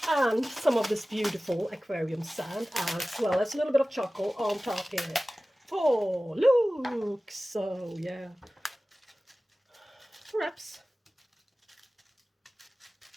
And some of this beautiful aquarium sand, as well as a little bit of charcoal on top here. Oh, look! So, yeah. Perhaps.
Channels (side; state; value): both; normal; correlation 0.97